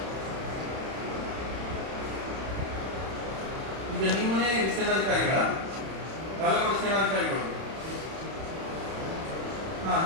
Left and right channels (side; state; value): left; late; 31 ms